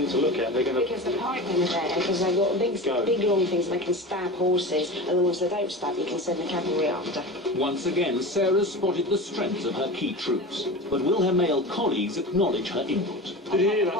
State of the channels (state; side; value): normal; both; correlation 0.30